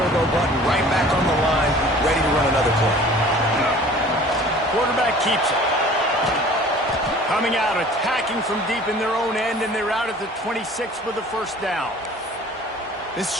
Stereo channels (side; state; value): both; normal; correlation 0.47